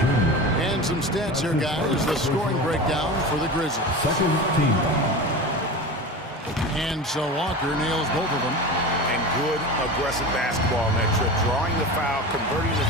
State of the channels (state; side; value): normal; both; correlation 0.29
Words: And some stats here, guys. The scoring breakdown for the Grizzlies. Second team. And so Walker nails both of them. And good aggressive basketball on that trip. Drawing the foul, converting the